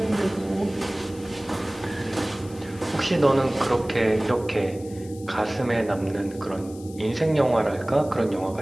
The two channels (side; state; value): left; noise; hiss, 21 dB below the sound